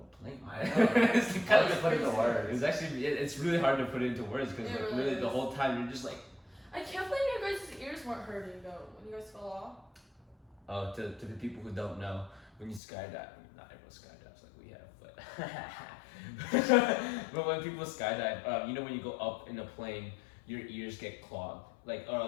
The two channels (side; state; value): right; drops out; at 12.8 s